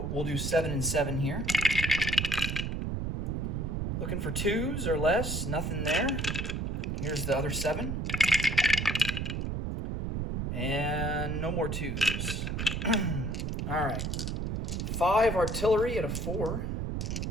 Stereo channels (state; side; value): noise; right; rumble, 2 dB below the sound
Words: we'll do 7 and 7 here. Looking for 2s or less, nothing there. Here's the other 7. And no more 2s. All right. 5 artillery at a 4.